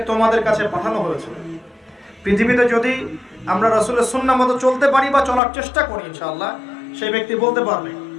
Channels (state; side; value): drops out; right; at 5.4 s